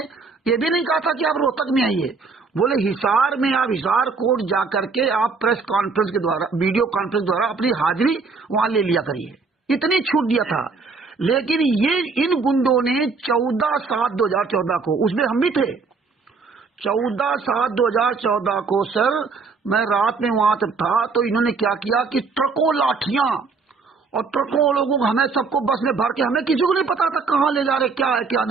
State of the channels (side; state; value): left; quieter; 4.6 dB